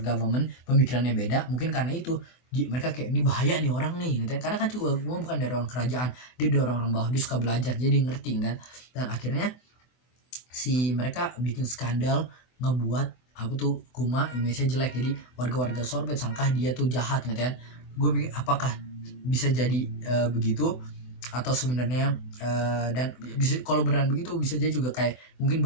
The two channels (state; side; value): late; right; 24 ms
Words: government, pemikirannya beda, mungkin karena itu mereka kayak ini bahaya nih orang nih katanya, karena kan juga Kuma bukan dari orang kerajaan, dia dari orang-orang bawah, dia suka belajar jadi ngerti kan. Dan akhirnya si mereka bikin skandal, ngebuat apa tuh Kuma image-nya jelek, jadi warga-warga sorbet sangka dia tuh jahat gitu kan. Gue pikir apakah bisa jadi begitu, atau sebenarnya dan bisa kalau beneran begitu bisa jadi juga kayak mungkin